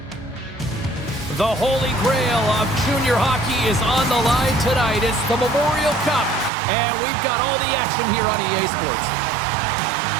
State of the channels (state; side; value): drops out; left; at 6.5 s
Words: The holy grail of junior hockey is on the line tonight. It's the Memorial Cup, and we've got all the action here on EA Sports.